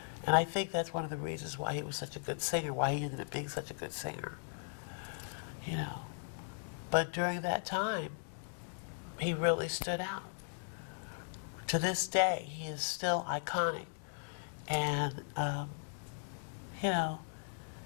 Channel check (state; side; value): silent; right; digital silence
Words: And I think that's one of the reasons why he was such a good singer, why he ended up being such a good singer. But during that time, he really stood out. To this day, he is still iconic. And,